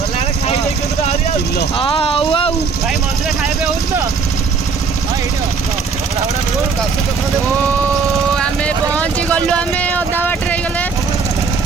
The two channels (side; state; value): left; quieter; 5.1 dB